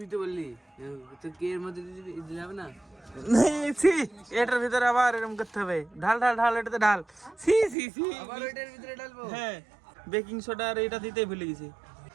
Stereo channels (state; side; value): drops out; left; at 7.8 s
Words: তো বললি তো কে এর মধ্যে দিতে যাবে না। এটার ভিতরে আবার এরকম করতে হবে। ঢাল ঢাল ঢাল, এটাতে ঢাল। আবার ওইটার ভিতরে ডালবো। হ্যাঁ বেকিং সোডা আর এটা দিতেই ভুলে গেছি,